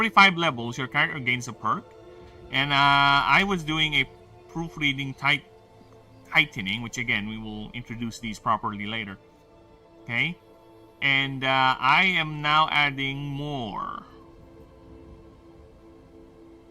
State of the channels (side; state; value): both; identical; correlation 1.00